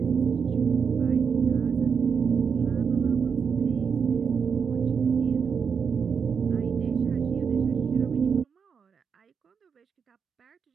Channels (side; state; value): left; quieter; 6.3 dB